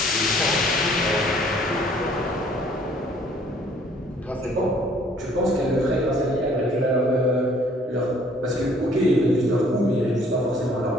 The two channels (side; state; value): both; normal; correlation 0.59